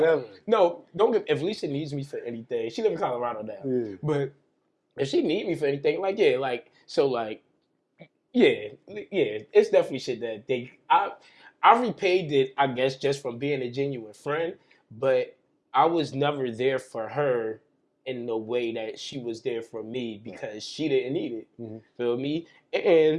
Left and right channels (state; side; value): identical; both; correlation 1.00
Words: No, don't give. If Lisa needs me for anything, she live in Colorado now. Yeah. But if she need me for anything, it's definitely shit that I repaid it, I guess, just from being a genuine friend. But I was never there for her in the way that she was there for me because she didn't need it. Mm-hmm. Feel me?